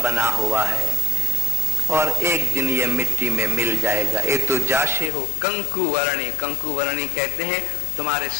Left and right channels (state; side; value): drops out; right; at 5.1 s